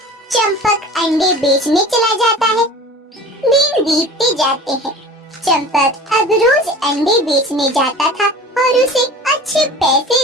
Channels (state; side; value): normal; both; correlation 0.40